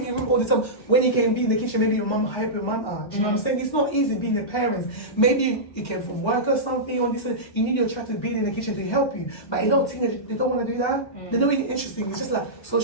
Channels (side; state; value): right; late; 1.3 ms